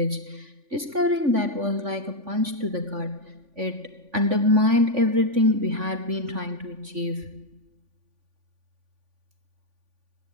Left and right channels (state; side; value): late; left; 3.5 ms